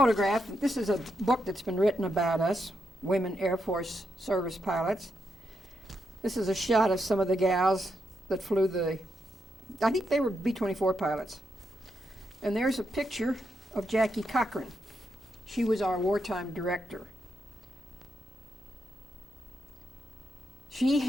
This is a book that's been written about us, Women Air Force Service Pilots. This is a shot of some of the gals that flew I think they were B-24 pilots. And there's a picture of Jackie Cochran. She was our wartime director. She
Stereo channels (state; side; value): normal; both; correlation 0.82